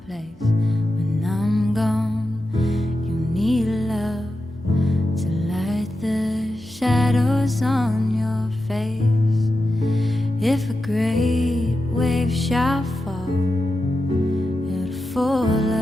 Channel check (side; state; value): both; normal; correlation 0.90